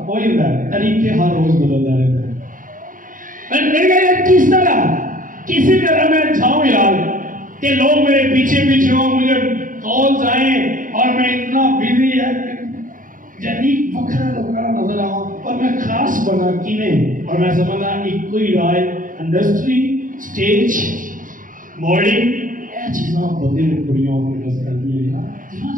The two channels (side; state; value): left; late; 0.39 ms